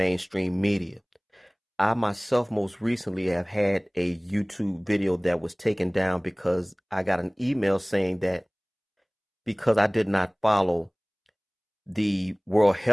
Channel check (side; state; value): both; identical; correlation 1.00